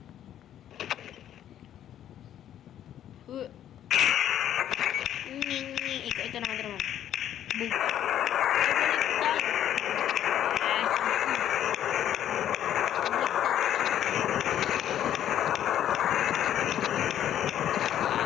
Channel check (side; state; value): right; quieter; 10.9 dB